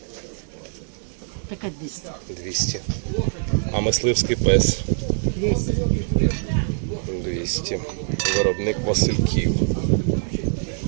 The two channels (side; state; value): left; silent; digital silence